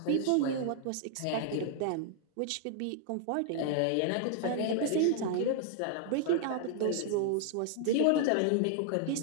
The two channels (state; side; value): different; both; correlation 0.00